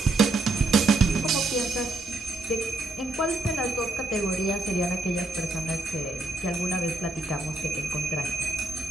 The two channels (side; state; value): left; quieter; 3.1 dB